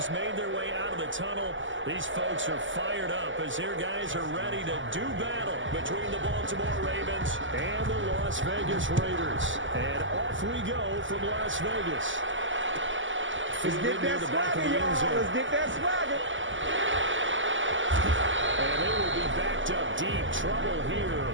made their way out of the tunnel. These folks are fired up as their guys are ready to do battle between the Baltimore Ravens and the Las Vegas Raiders. And off we go from Las Vegas. Let's get that swagger, y'all. Let's get that swagger. And they will be backed up deep. Trouble here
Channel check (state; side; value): late; left; 0.56 ms